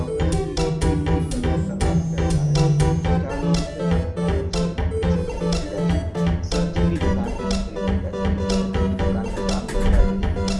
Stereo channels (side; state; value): both; identical; correlation 1.00